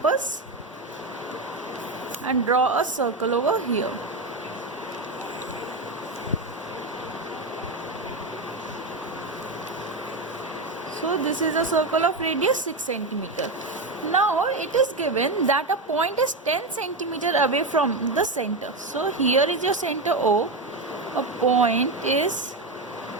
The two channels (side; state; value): left; quieter; 3.1 dB